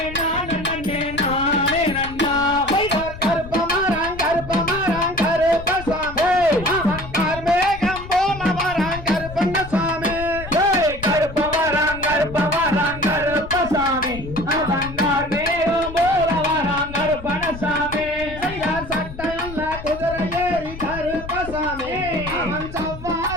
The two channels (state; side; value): noise; left; rumble, 12 dB below the sound